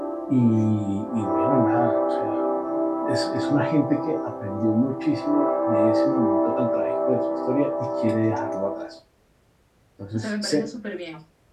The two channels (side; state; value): both; identical; correlation 1.00